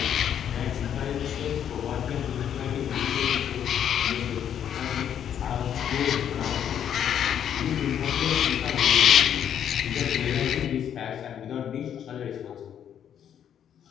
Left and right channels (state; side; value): quieter; right; 9.3 dB